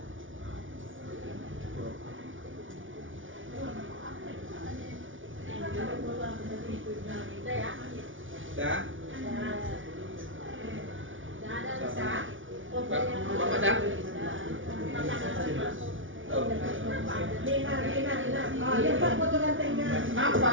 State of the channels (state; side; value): late; left; 0.57 ms